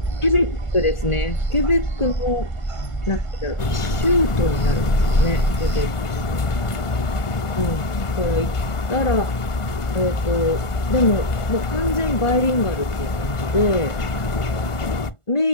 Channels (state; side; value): late; right; 1.4 ms